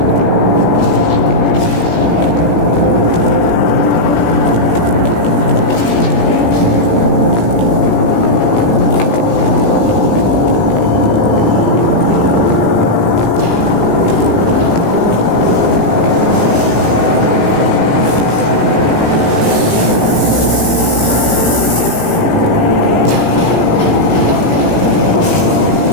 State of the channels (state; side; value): late; right; 17 ms